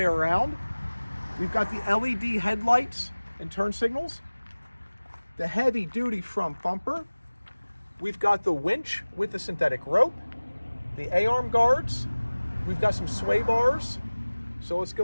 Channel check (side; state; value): both; inverted; correlation -1.00